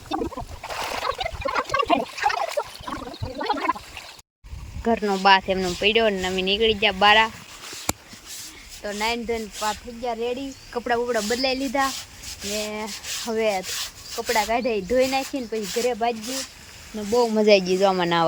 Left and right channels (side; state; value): both; identical; correlation 1.00